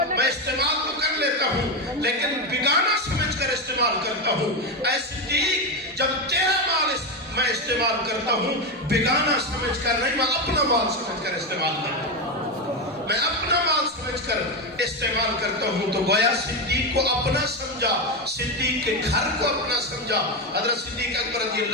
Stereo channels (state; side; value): normal; both; correlation 0.12